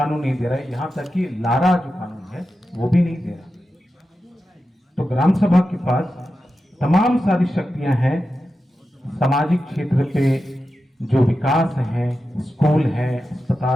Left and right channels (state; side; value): normal; both; correlation 0.91